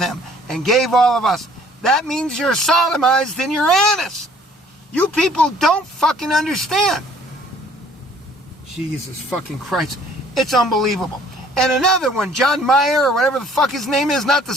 and gave all of us. That means you're sodomized in your anus. You people don't fucking understand. Jesus fucking Christ. It's unbelievable. And another one, John Mayer, or whatever the fuck his name is, not the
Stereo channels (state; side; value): normal; both; correlation 0.56